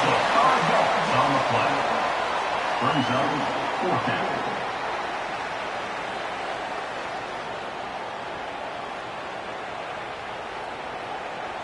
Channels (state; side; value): identical; both; correlation 1.00